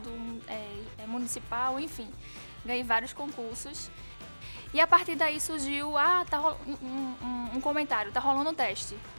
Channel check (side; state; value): both; inverted; correlation -1.00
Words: municipal, enfim. Ganhei vários concursos. E a partir daí surgiu, um comentário, tá rolando um teste.